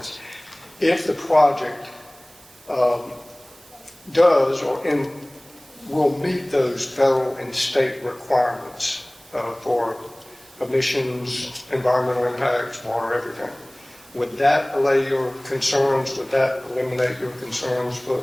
If the project does or will meet those federal and state requirements for emissions, environmental impacts, water, everything, would that allay your concerns? Would that eliminate your concerns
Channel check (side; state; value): right; noise; hiss, 25 dB below the sound